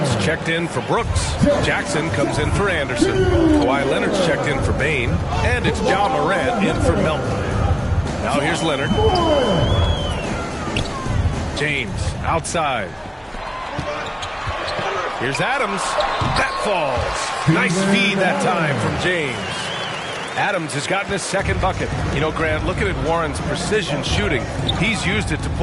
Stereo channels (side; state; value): both; identical; correlation 1.00